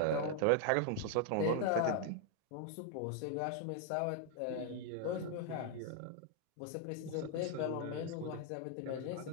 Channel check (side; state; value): both; different; correlation 0.00